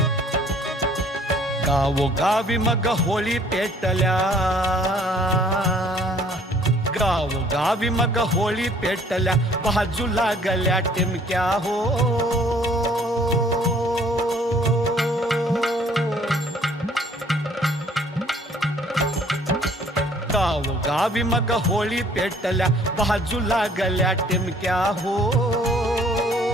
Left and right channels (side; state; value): both; normal; correlation 0.58